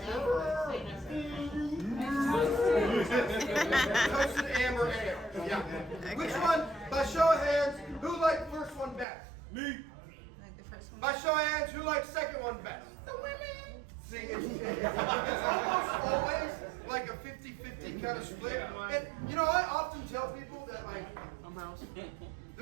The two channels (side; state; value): left; drops out; at 9.1 s